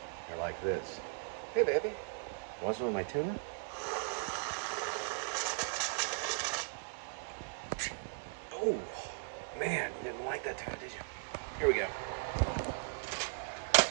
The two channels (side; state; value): left; quieter; 35.7 dB